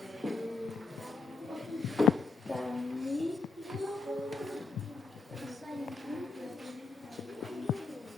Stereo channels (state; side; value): quieter; right; 4.1 dB